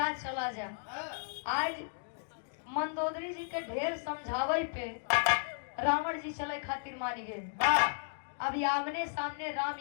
चला जा। आज मंदोदरी जी के ढेर समझावे पे रावण जी चले खातिर मानी गए। अब आमने सामने राम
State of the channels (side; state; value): right; silent; digital silence